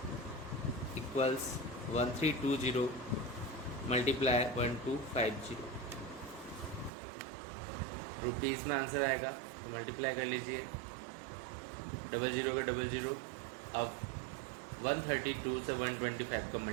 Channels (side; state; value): left; drops out; at 6.9 s